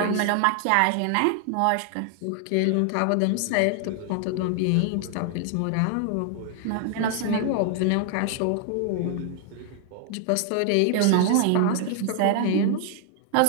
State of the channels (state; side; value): different; both; correlation 0.00